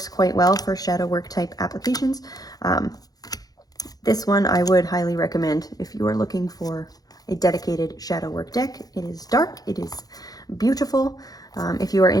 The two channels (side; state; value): right; late; 0.18 ms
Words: quite well for shadow work type applications. This one I would highly recommend if you are looking for a dedicated shadow work deck. It is dark, it is beautiful. If you are